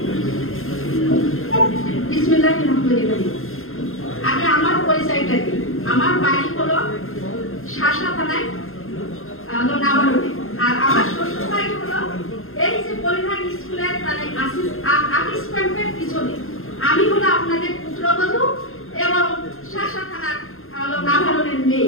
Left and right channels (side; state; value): right; late; 0.61 ms